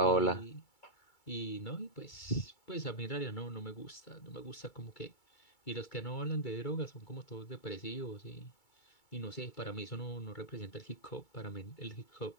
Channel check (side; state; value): right; late; 2.3 ms